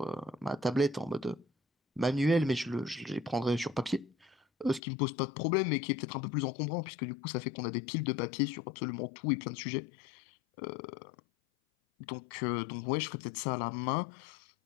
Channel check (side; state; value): right; drops out; at 4.8 s